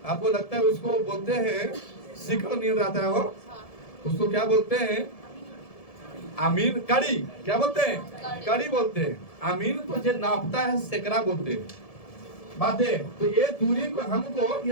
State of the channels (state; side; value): late; right; 1.7 ms